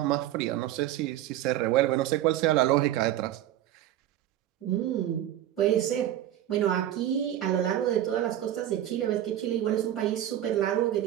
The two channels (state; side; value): quieter; left; 12.5 dB